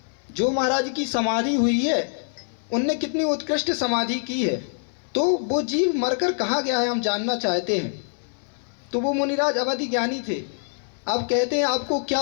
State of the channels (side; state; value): right; silent; 58 dB below the other